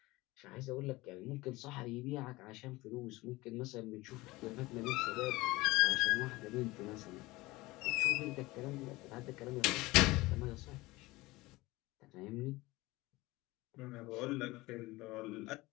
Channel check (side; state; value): right; quieter; 20.6 dB